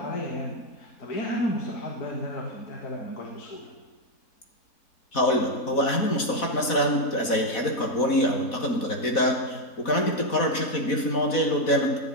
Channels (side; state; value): right; late; 4.1 ms